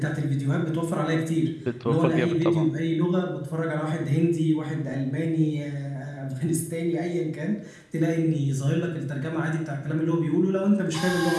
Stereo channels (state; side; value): identical; both; correlation 1.00